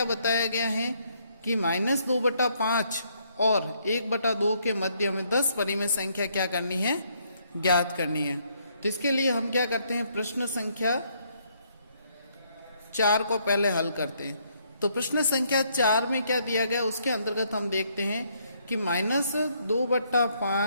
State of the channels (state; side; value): inverted; both; correlation -0.71